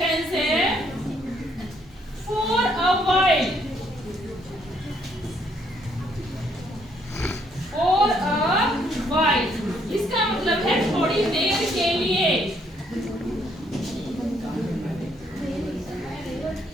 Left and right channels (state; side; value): normal; both; correlation 0.69